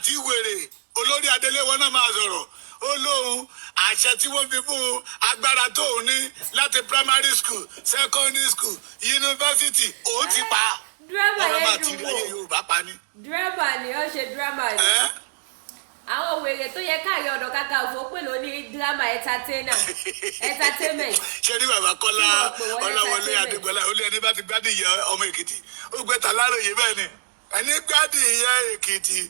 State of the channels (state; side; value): silent; left; digital silence